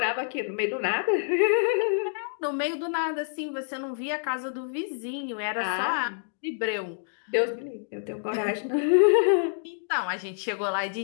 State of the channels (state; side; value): silent; right; digital silence